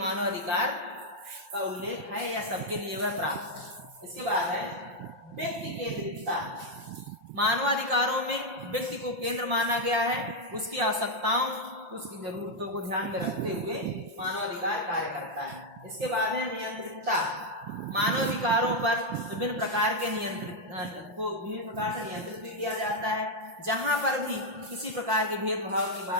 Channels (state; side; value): late; left; 5.7 ms